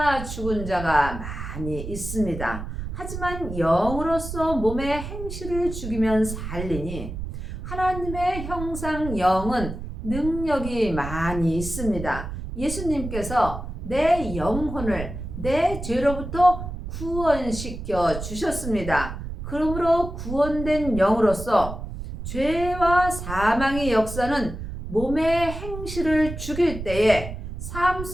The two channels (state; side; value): noise; right; rumble, 8 dB below the sound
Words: 죽은 자가 많이 있습니다. 하지만 영으로서 몸의 행실을 죽이면 살리니 하나님의 형상 영은 능력이 많이 있습니다. 예수님께서 내 영혼을 내 죄로부터 구원시켜 주셨습니다. 그러므로 구원된 영으로서 죄와 사망의 역사는 몸의 행실을 죽일 때에 삶